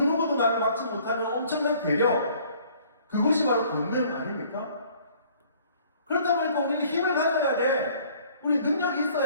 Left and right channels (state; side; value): inverted; both; correlation -0.56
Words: 나를 막지 못하는 엄청난 괴력, 그것이 바로 권능 아닙니까? 그렇다 보니까 우리는 힘을 가져야 돼. 우리 능력이